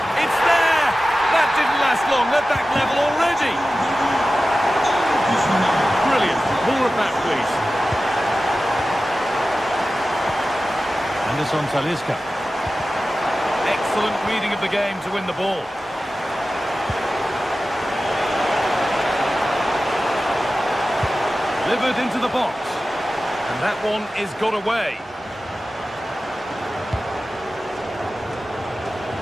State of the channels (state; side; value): normal; both; correlation 0.95